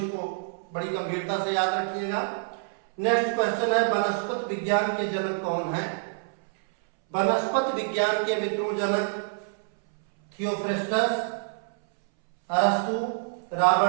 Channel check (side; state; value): left; silent; 60 dB below the other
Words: बड़ी गंभीरता से याद रखिएगा। नेक्स्ट क्वेश्चन है, वनस्पति विज्ञान के जनक कौन है। वनस्पति विज्ञान के मित्रों जनक थियोफ्रेस्टस, अरस्तु,